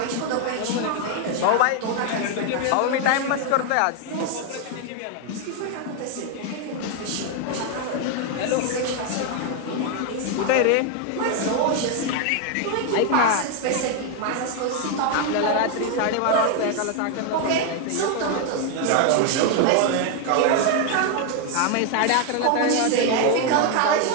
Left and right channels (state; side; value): different; both; correlation 0.01